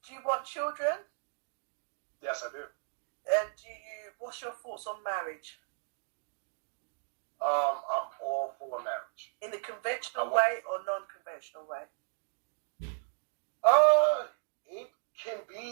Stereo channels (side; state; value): left; silent; digital silence